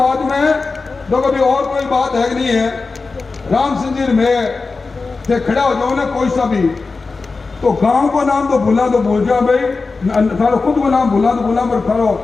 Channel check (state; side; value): quieter; right; 4.1 dB